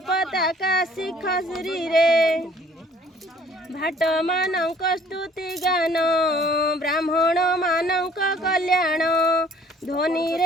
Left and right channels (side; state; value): both; normal; correlation 0.56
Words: पताका शिख श्रीरे भाट मानक स्तुति गान ब्राह्मण मानक कल्याण ध्वनि